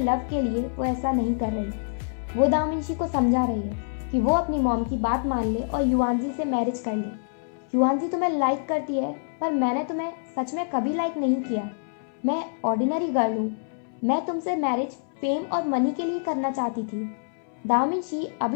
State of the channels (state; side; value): silent; right; 61 dB below the other